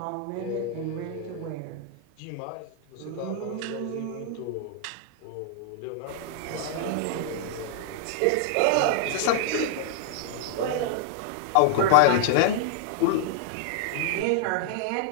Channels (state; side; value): different; both; correlation -0.01